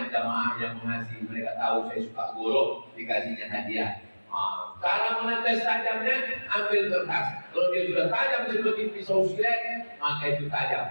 jamaah yang mengasihi, mereka tahu saya suka golok, dikasihnya hadiah. Cara menetes tajamnya, ambil kertas. Kalau dia sudah tajam seperti pisau silet, maka itu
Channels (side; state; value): both; inverted; correlation -1.00